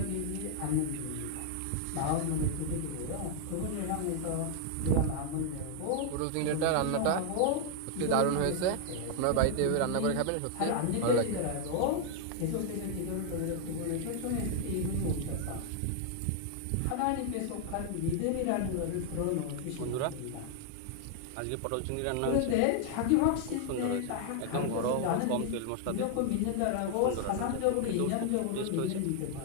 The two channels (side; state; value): both; different; correlation 0.00